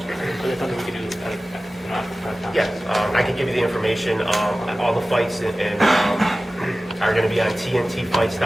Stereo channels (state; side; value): normal; both; correlation 0.96